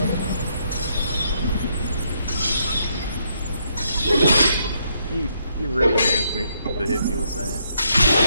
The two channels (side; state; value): both; inverted; correlation -0.74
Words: You really meant me to hit me with that.